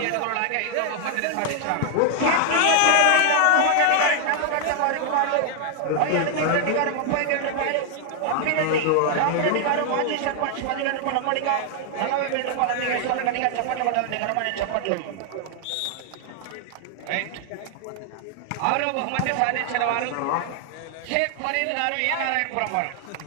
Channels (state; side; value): different; both; correlation 0.00